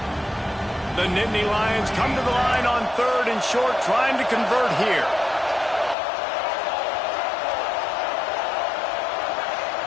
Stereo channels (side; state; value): right; drops out; at 6.0 s